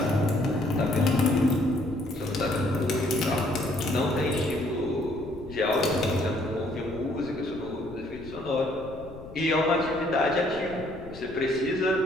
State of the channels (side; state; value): left; noise; rumble, 17 dB below the sound